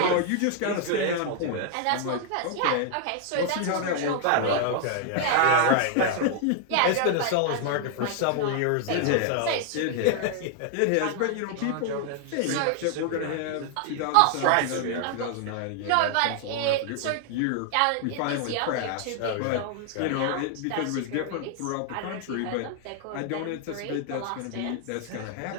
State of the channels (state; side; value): different; both; correlation 0.00